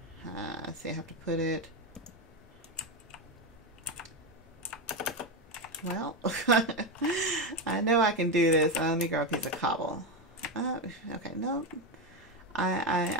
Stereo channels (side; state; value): both; normal; correlation 0.11